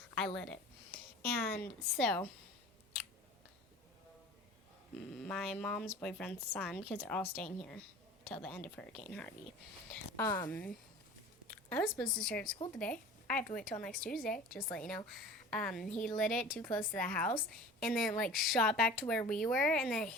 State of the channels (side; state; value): both; normal; correlation 0.40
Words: I lit it. And so, my mom's boyfriend's son, because they're all staying here till the end of Hurricane Harvey. I was supposed to start school today. I have to wait till next Tuesday, just to let you know. He lit it too close to the house, and then like shot back to where we were, and then it